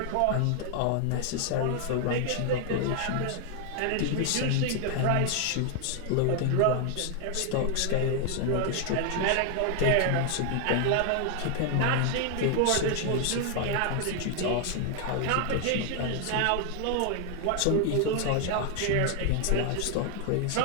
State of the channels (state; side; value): different; both; correlation 0.00